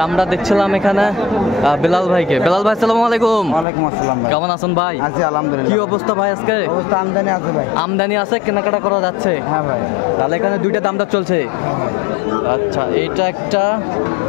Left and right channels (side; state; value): right; drops out; at 3.7 s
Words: আমরা দেখছিলাম এখানে বেলাল ভাইকে। বেলাল ভাই আসসালামু আলাইকুম। ওয়ালাইকুম আসসালাম ভাই। কেমন আছেন ভাই? আছি আলহামদুলিল্লাহ। কি অবস্থা ভাই আজকে? অবস্থা আমদানি আছে ভাই। আমদানি আছে, কেনাকাটা করা যাচ্ছে? হ্যাঁ ভাই। তাহলে এখানে দুইটা দামটা চলছে। আচ্ছা, এটা একটা,